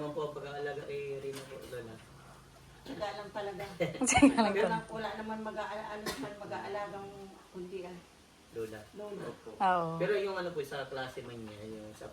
naman po ang pag-aalaga kay Rina po, Lola? Tsaga lang talaga. Wala naman mag-aalagang kundi Lola. Lola. Opo. Oo. Pero yung ano po sa klase man niya, yung sa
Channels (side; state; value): both; identical; correlation 1.00